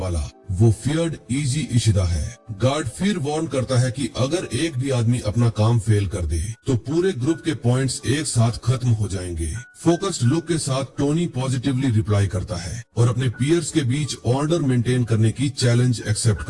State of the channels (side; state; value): both; identical; correlation 1.00